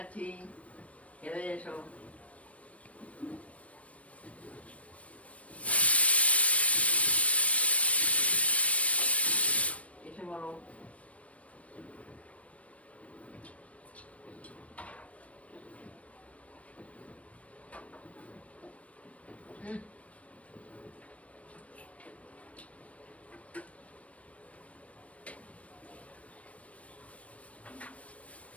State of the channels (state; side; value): late; right; 0.065 ms